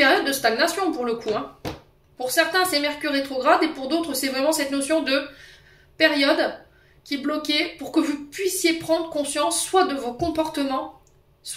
de stagnation pour le coup. Hein. Pour certains, c'est Mercure rétrograde et pour d'autres, c'est vraiment cette notion de période qui est bloquée pour que vous puissiez prendre conscience soit de vos comportements,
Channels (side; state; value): both; identical; correlation 1.00